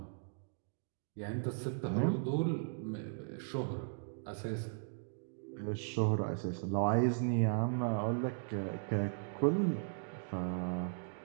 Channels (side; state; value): left; silent; digital silence